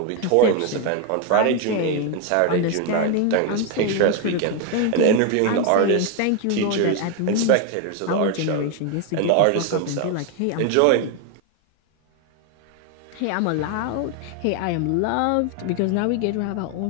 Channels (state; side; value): different; both; correlation 0.01